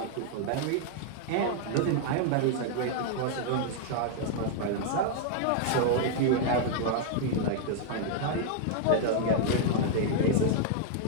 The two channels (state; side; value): different; both; correlation 0.00